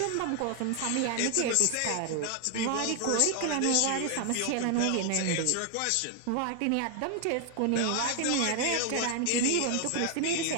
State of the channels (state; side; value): different; both; correlation 0.00